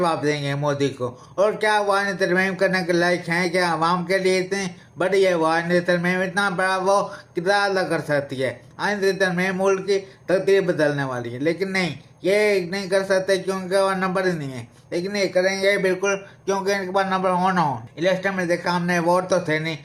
देंगे मोदी को? और क्या वो आईनी तरमीम करने के लायक हैं? क्या आवाम के लिए इतनी बड़ी है वो आईनी तरमीम? इतना बड़ा वो कितना अदा कर सकती है? आईनी तरमीम मुल्क की तकदीर बदलने वाली है, लेकिन नहीं, ये नहीं कर सकते क्योंकि वो नंबर ही नहीं है। लेकिन ये करेंगे बिल्कुल क्योंकि इनके पास नंबर होना हो। इलेक्शन में देखा हमने, वोट तो थे नहीं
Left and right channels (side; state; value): both; identical; correlation 1.00